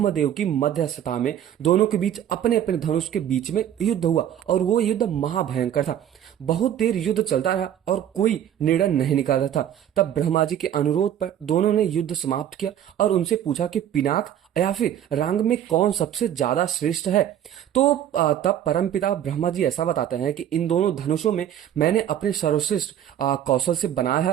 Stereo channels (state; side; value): quieter; left; 10.5 dB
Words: की मध्यस्थता में दोनों के बीच अपने अपने धनुष के बीच में युद्ध हुआ और वो युद्ध महाभयंकर था। बहुत देर युद्ध चलता रहा और कोई निर्णय नहीं निकाल रहा था। तब ब्रह्मा जी के अनुरोध पर दोनों ने युद्ध समाप्त किया और उनसे पूछा कि पिनाक या फिर रांग में कौन सबसे ज्यादा श्रेष्ठ है। तो तब परमपिता ब्रह्मा जी ऐसा बताते हैं कि इन दोनों धनुषों में मैंने अपने सर्वश्रेष्ठ कौशल से बनाया